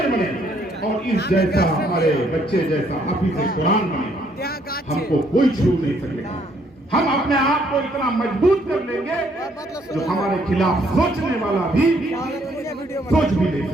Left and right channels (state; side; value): normal; both; correlation 0.68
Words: बने, और इस जैसा हमारे बच्चे जैसा हाफिज कुरान बने। हमको कोई छू नहीं सकेगा। हम अपने आप को इतना मजबूत कर लेंगे जो हमारे खिलाफ सोचने वाला भी सोच भी नहीं